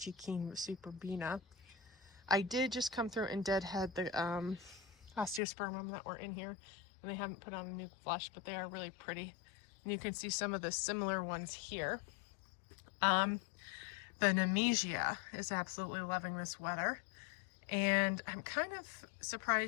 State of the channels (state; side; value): drops out; right; at 5.4 s